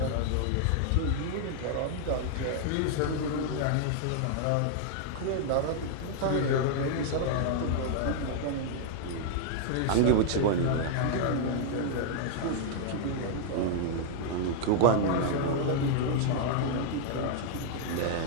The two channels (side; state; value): both; different; correlation -0.01